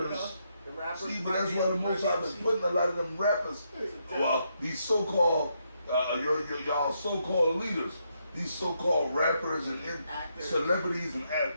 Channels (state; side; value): inverted; both; correlation -0.79